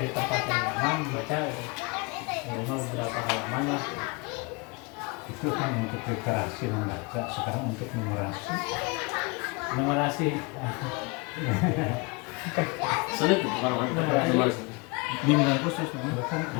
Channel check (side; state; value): right; quieter; 28.9 dB